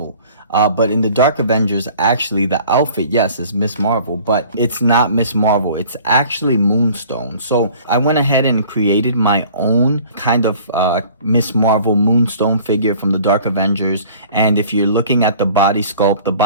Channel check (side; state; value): both; inverted; correlation -0.49